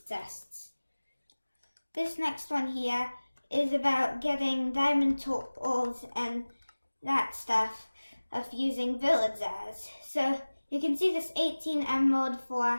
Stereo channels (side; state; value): both; inverted; correlation -1.00